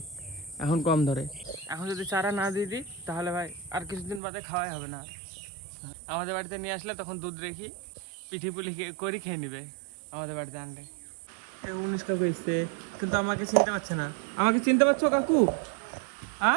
এখন কম ধরে। এখন যদি চারা না দিয়ে দিই তাহলে ভাই আর কিছুদিন বাদে খাওয়াই হবে না। আমাদের বাড়িতে নিয়ে আসলে তখন দুধ রেখি পিঠি পুলি করে খেয়ে নিবে আমাদের বাড়িতে আনলে। 19 কাকু এসছে, কিন্তু আমাকে চিনতে পারছে না। আমাকে চিনতে পারছো কাকু?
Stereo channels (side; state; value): left; drops out; at 4.2 s